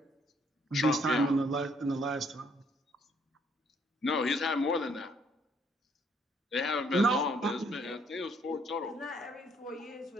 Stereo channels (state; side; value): normal; both; correlation 0.67